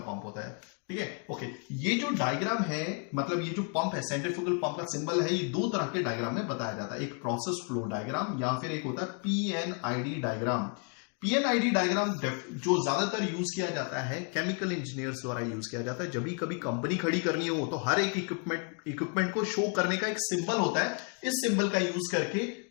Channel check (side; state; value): right; quieter; 39.3 dB